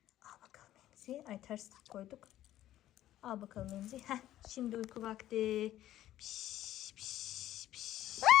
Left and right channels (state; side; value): quieter; right; 13.3 dB